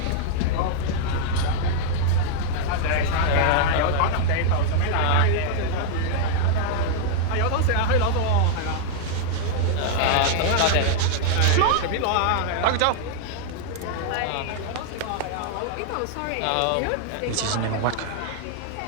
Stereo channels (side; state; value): both; different; correlation -0.01